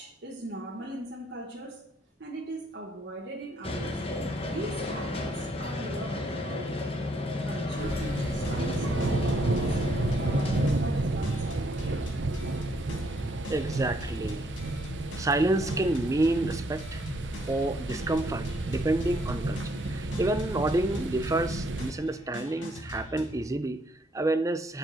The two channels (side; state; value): both; normal; correlation 0.70